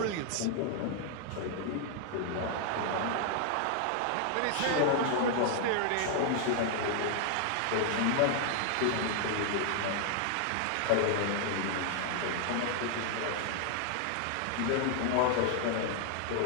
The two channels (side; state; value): both; different; correlation 0.00